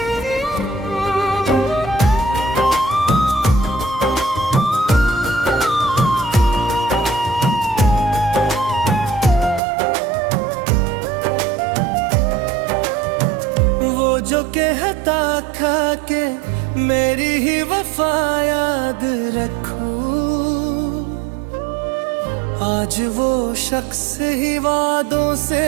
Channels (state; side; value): drops out; left; at 9.6 s